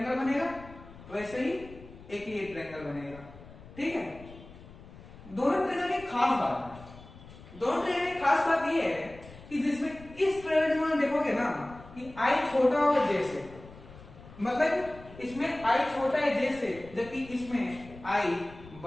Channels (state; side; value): noise; left; rumble, 18 dB below the sound